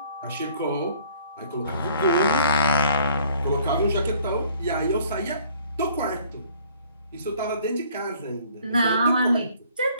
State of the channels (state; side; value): inverted; both; correlation -0.58